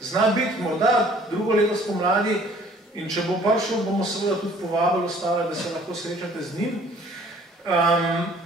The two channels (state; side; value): normal; both; correlation 0.55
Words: zna biti morda drugo leto spomladi in če bo prišel, bomo seveda tudi povabili ostale, da se lahko srečate z njim.